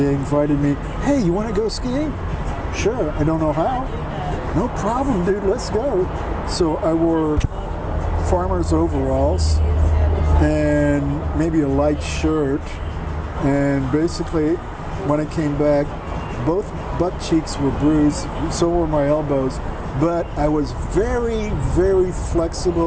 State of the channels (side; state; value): both; identical; correlation 1.00